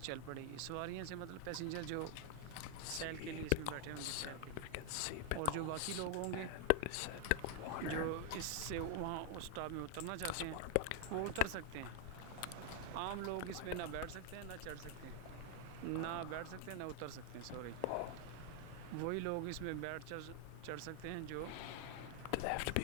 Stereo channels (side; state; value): both; different; correlation 0.00